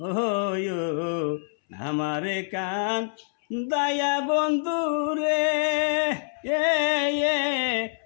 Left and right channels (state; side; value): silent; right; 61 dB below the other